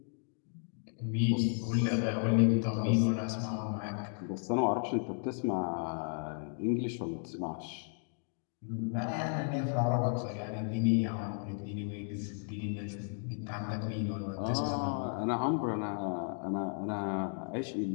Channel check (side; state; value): right; silent; 55 dB below the other